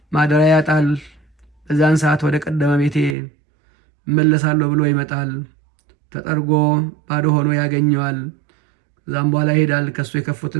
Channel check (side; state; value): left; drops out; at 3.2 s